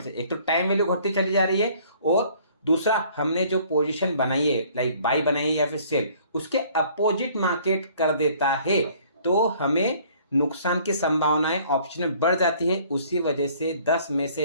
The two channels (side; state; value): both; inverted; correlation -0.56